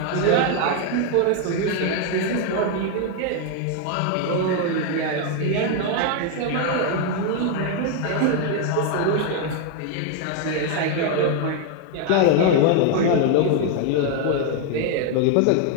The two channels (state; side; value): different; both; correlation 0.00